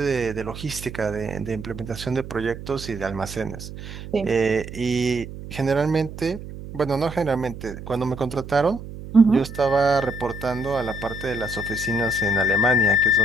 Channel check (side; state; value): right; noise; hum, 11 dB below the sound